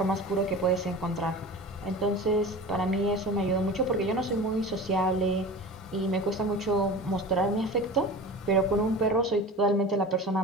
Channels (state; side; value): normal; both; correlation 0.34